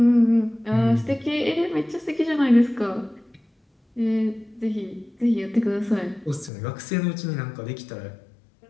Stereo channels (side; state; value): right; drops out; at 6.5 s